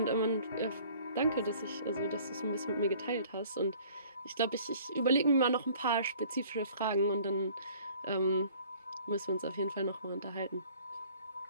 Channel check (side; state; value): both; inverted; correlation -0.53